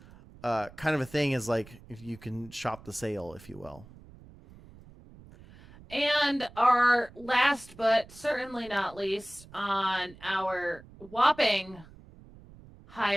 kind of a thing, is like if you can shop the sale, if you will. And our last but certainly not least on our whopping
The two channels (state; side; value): noise; right; rumble, 21 dB below the sound